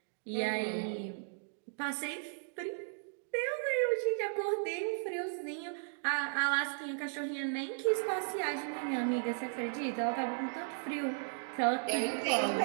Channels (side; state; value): left; silent; digital silence